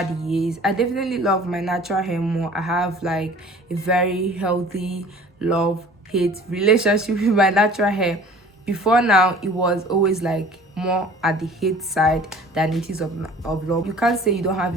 years. I definitely love my natural hair more. I have like a very healthy love-hate relationship with my natural hair. Before now, it was always like more at the hate side than it is of love. You can't say you don't have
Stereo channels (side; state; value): both; normal; correlation 0.48